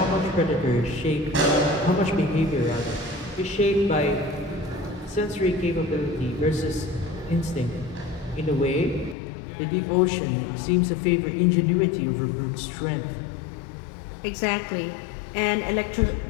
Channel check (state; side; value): drops out; right; at 9.2 s